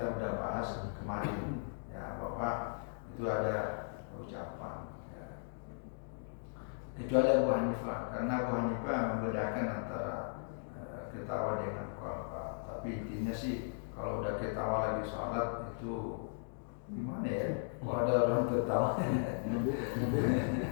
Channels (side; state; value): right; silent; digital silence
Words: udah bahas kemarin ya, bahwa itu ada ucapan. Kecuali Abu Hanifah, karena Abu Hanifah membedakan antara ketawa dengan qalqa. Tapi intinya sih kalau udah ketawa lagi sholat itu gimana ya? Kalau ada orang tertawa,